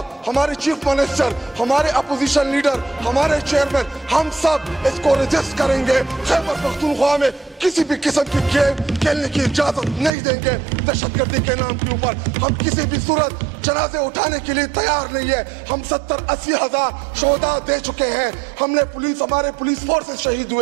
हमारे चीफ मिनिस्टर, हमारे अपोजिशन लीडर, हमारे चेयरमैन, हम सब इसको रजिस्ट करेंगे। खैबर पख्तूनख्वा में किसी भी किस्म की गेम खेलने की इजाजत नहीं देंगे। दहशतगर्दी के नाम के ऊपर हम किसी भी सूरत जनाजे उठाने के लिए तैयार नहीं है। हम 70-80 हजार शोहदा दे चुके हैं। हमने हमारे पुलिस फोर्सेस शहीद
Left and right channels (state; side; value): drops out; left; at 10.1 s